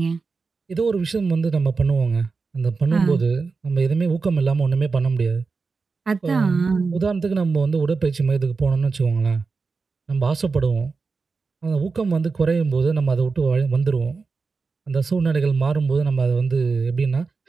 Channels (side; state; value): left; quieter; 4.5 dB